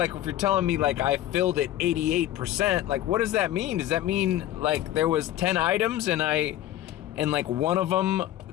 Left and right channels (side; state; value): right; quieter; 13.4 dB